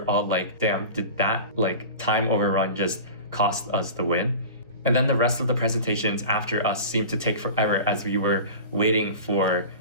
all like, damn, did that time overrun just cost us the win? And then the rest of the presentations after us seemed to take forever as we were waiting for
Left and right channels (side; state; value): both; inverted; correlation -0.34